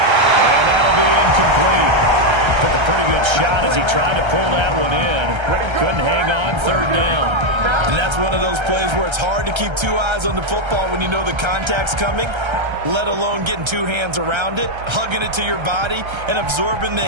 that'll be incomplete. Took a pretty good shot as he tried to pull that one in. Couldn't hang on, third down. And that's one of those plays where it's hard to keep two eyes on the football when you know the contact's coming, let alone getting two hands around it, hugging it to your body, and absorbing the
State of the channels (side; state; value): left; late; 1.3 ms